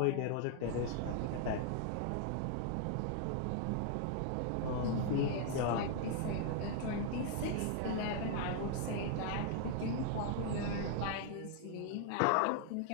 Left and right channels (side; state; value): both; different; correlation 0.00